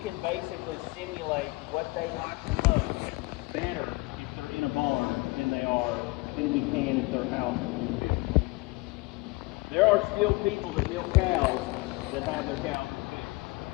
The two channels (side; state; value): right; quieter; 24.2 dB